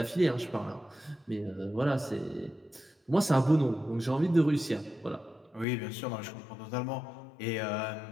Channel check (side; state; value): right; drops out; at 5.7 s